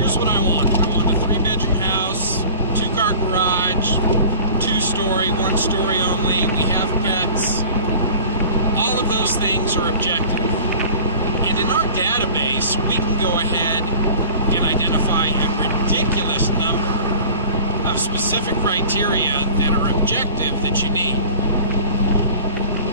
what I want. I want a 3-bedroom house, 2-car garage, 2-story, 1-story only. We have pets. All of those things are objective. And in our database, we can go ahead and identify a ridiculous number of specific criteria that are objective that you need.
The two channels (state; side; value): inverted; both; correlation -0.43